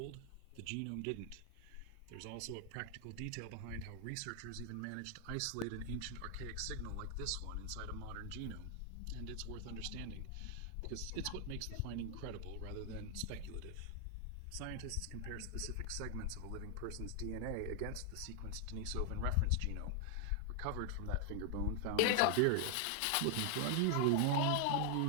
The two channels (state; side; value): different; both; correlation 0.00